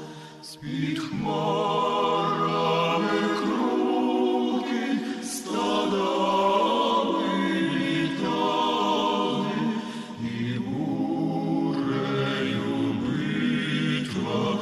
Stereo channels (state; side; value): identical; both; correlation 1.00